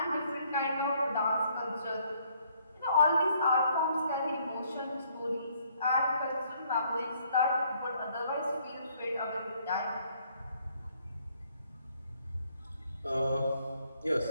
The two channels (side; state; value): both; inverted; correlation -0.66